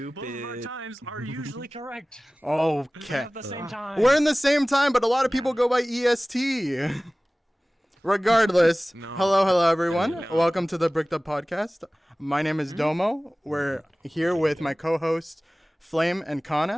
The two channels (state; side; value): normal; both; correlation 0.98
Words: of our Stupid. times are usually correct. Okay. At the same time. We're in the same time, but a lot of people go by EST. Regardless, No. hello, everyone. No. Welcome to the Bricked Up Podcast. My name is Domo. We're here with my co-hosts, Flame and